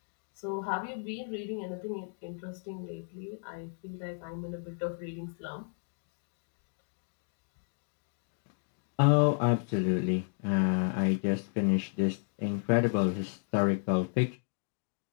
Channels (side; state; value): right; silent; digital silence